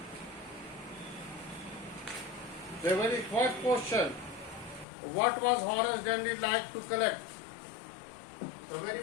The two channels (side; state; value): right; drops out; at 4.9 s